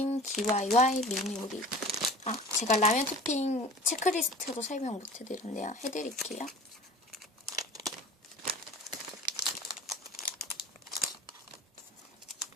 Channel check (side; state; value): both; normal; correlation 0.41